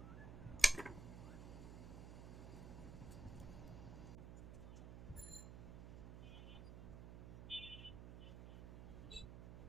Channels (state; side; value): noise; right; hum, 9 dB below the sound